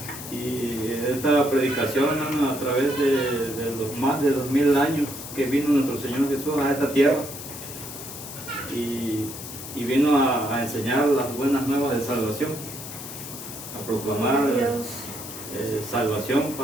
Y esta predicación, hermano, a través de los más de 2000 años que vino nuestro Señor Jesús a esta tierra y vino a enseñar las buenas nuevas de salvación, a proclamar Dios. salvación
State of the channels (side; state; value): left; noise; hiss, 11 dB below the sound